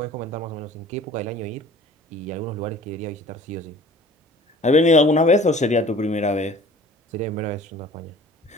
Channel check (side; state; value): both; normal; correlation 0.47